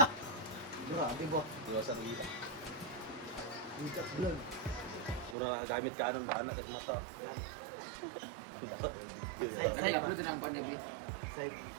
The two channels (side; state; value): left; drops out; at 5.4 s